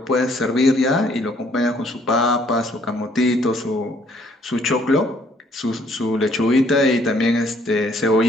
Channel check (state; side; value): normal; both; correlation 0.64